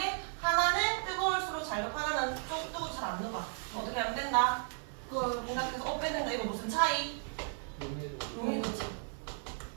하나는 뜨거울수록 잘 녹고 하나는 좀 뜨거워 잘 안 녹아. 어떻게 하면 된다? 그 생각해서 빼는다. 이거 무슨 차이? 용이도지.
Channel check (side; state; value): left; silent; 55 dB below the other